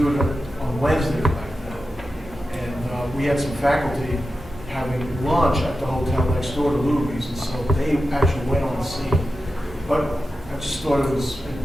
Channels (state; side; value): normal; both; correlation 0.91